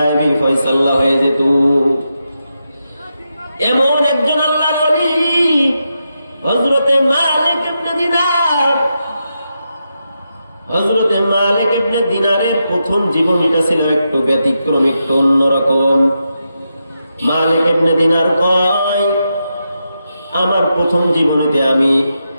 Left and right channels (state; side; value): inverted; both; correlation -0.86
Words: ফয়সালা হয়ে যেত। এমন একজন আল্লাহর ওলি হযরতে মালিক ইবনে দিনার। হযরতে মালিক ইবনে দিনারের প্রথম জীবনীটা ছিল একটু ব্যতিক্রম, একটু অন্যরকম। মালিক ইবনে দিনার কয়, আমার প্রথম জীবনেতে আমি